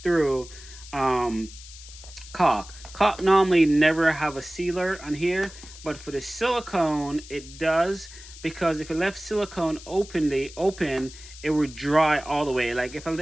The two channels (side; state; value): left; noise; hiss, 17 dB below the sound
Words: through caulk. Caulk normally never have a sealer on here, but for the silicone it does, because if you left silicone open, it would dry all the way. Like if I